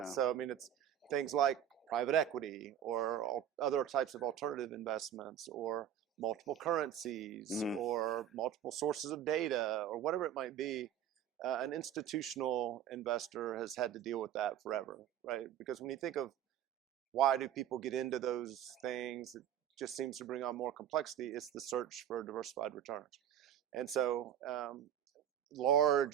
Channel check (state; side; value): quieter; left; 10.0 dB